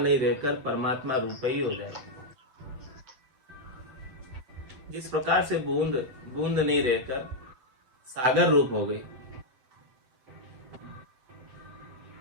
रहकर परमात्मा रूप ही हो जाएगी। जिस प्रकार से बूंद बूंद नहीं रहकर सागर रूप हो गई,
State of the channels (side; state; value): left; late; 7.8 ms